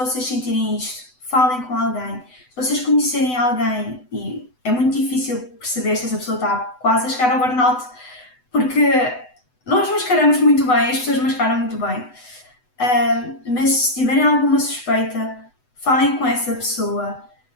sentirem isto, falem com alguém. Se vocês conhecerem alguém, e é muito difícil perceber se essa pessoa está quase a chegar ao burnout, porque nós mascaramos muito bem, as pessoas mascaram muito bem. Mas se tiverem alguma suspeita, falem com essa pessoa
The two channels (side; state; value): right; late; 8.0 ms